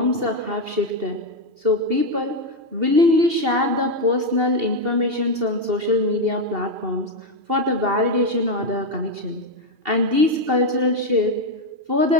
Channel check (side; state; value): left; late; 2.7 ms